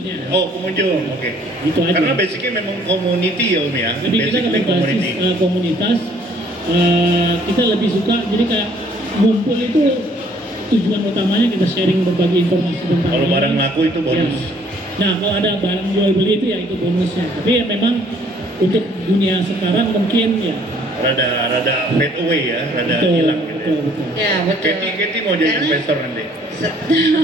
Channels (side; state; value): both; normal; correlation 0.61